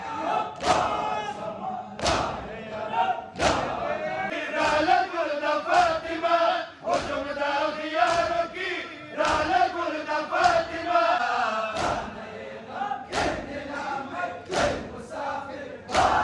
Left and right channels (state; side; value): identical; both; correlation 1.00